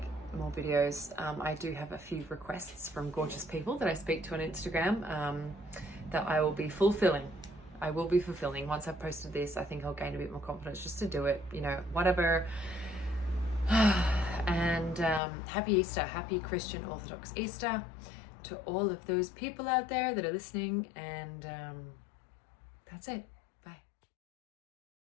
more videos. I do have a few requests from gorgeous people that I speak to on Instagram that I will be fulfilling. I will be fulfilling. Once I've posted this, I think I'll gain a bit more confidence just to do it, you know, whatever. And happy Easter, happy Christian Orthodox Easter to all of those people out there that are listening, and that's it.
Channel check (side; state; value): right; drops out; at 15.2 s